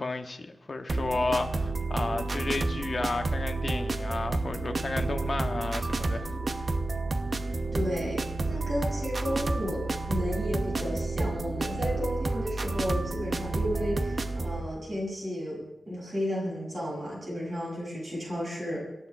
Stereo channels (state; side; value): normal; both; correlation 0.92